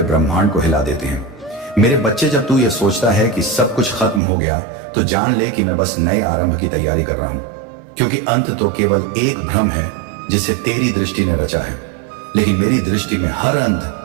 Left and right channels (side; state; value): left; drops out; at 4.2 s